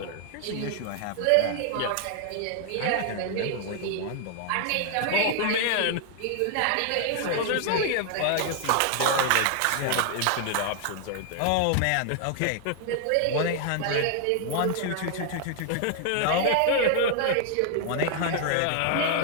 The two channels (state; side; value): different; both; correlation 0.00